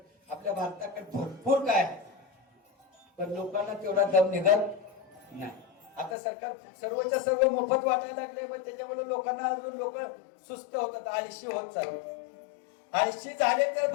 आपल्या भारताकडे भरपूर काय आहे, पण लोकांना तेवढा दम निघत नाही. आता सरकार सर्वच्या सर्व मोफत वाटायला लागले, मग त्याच्यामुळे लोकांना अजून लोक सुस्त होतात, आळशी होत चालतात. आळशी झाले तर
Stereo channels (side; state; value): right; drops out; at 6.2 s